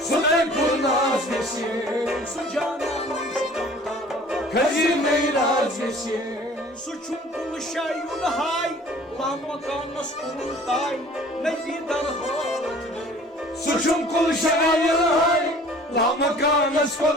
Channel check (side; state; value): both; normal; correlation 0.50